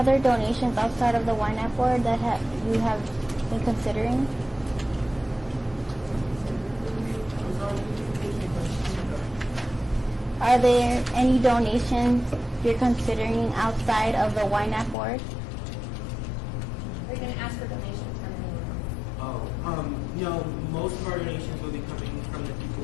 donations outside of the Ynapp board that you have been considering? Are there any donations you're considering outside of the Ynapp board? Are you going to ask for donations from anyone? No, most of our donations will be coming from the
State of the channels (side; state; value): right; drops out; at 15.0 s